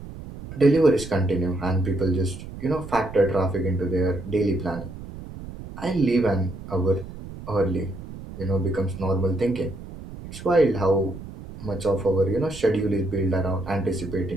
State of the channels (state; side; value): noise; right; rumble, 13 dB below the sound